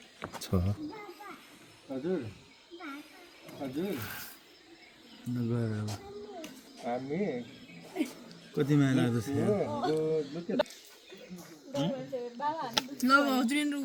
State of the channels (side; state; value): both; identical; correlation 1.00